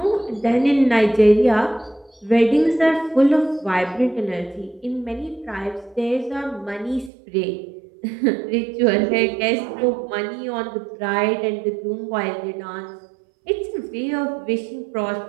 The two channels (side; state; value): left; drops out; at 7.1 s